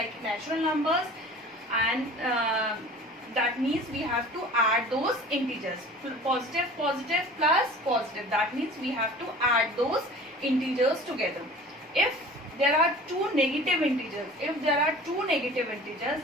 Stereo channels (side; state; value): both; normal; correlation 0.43